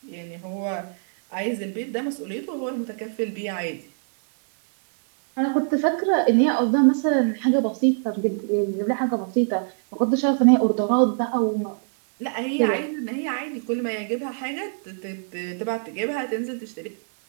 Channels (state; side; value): silent; left; digital silence